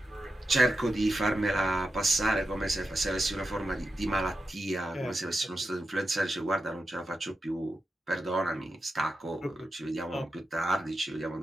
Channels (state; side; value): normal; both; correlation 0.90